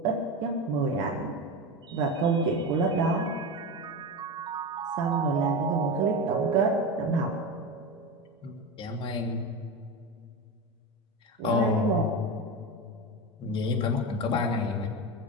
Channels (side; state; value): both; normal; correlation 0.21